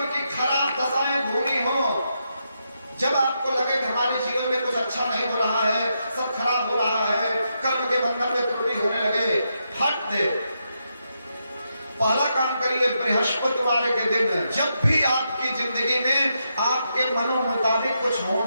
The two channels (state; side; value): inverted; both; correlation -0.83